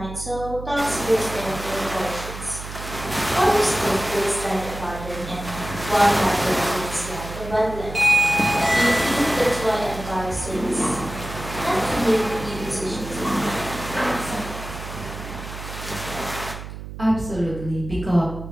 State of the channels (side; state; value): right; noise; hum, 10 dB below the sound